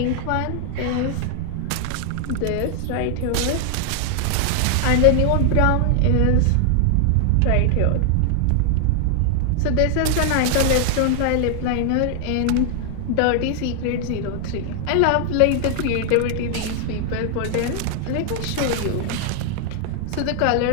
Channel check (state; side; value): different; both; correlation 0.00